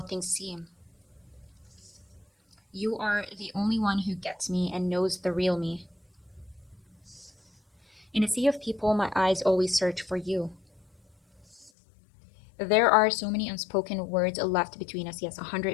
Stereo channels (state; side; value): drops out; right; at 11.7 s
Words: things seem. You are the only one who gets me and knows the real me. In a sea of people, my eyes always search for you. There are so many unspoken words left between us. Yes,